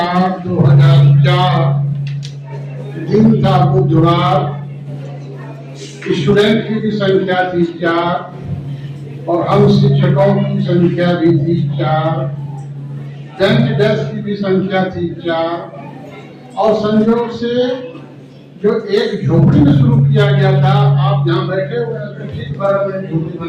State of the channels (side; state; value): both; identical; correlation 1.00